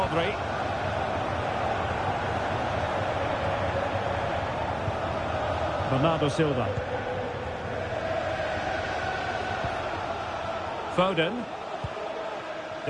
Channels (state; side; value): identical; both; correlation 1.00